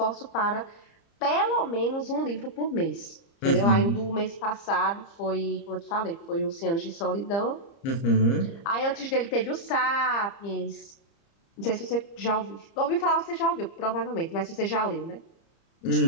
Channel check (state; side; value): late; right; 30 ms